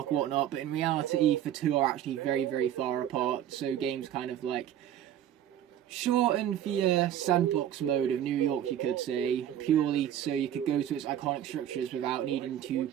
or whatnot, but in reality the two are actually very, very far apart, so games kind of, like, shorten the sandbox mode of New York, you could say, purely so you could go to its iconic structures without needing to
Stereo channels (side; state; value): left; quieter; 10.8 dB